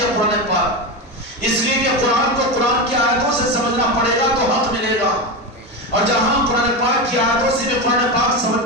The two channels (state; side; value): normal; both; correlation 0.17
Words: قرآن پاک، اس لیے کہ قرآن کو قرآن کی آیتوں سے سمجھنا پڑے گا تو حق ملے گا، اور جہاں قرآن پاک کی آیتوں سے بھی قرآن پاک سمجھ